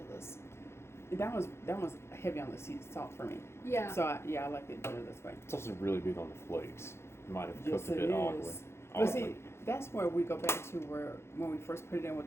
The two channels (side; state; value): right; late; 0.12 ms